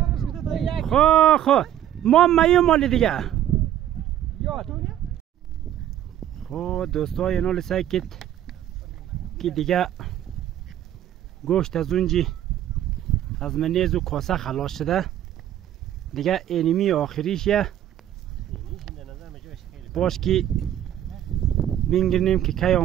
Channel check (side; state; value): left; quieter; 11.6 dB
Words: خو ما مایو مالی دیگه خو دوستای نال سعی کت که دیگه گوشت از اونجی از منیز و کاسه خلاص شده دیگه اینمی آخریشه باش که بینگرنیم که کی